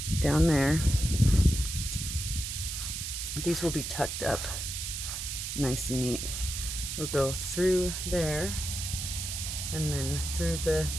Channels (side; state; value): right; noise; hiss, 4 dB below the sound